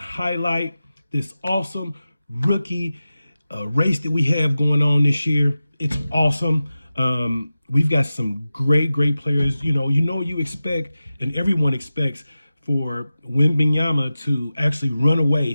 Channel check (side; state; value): both; inverted; correlation -0.94